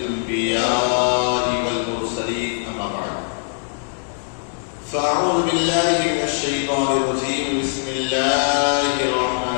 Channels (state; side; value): silent; right; digital silence